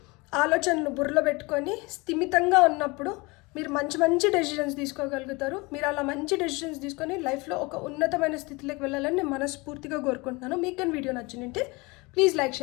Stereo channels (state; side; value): quieter; right; 25.5 dB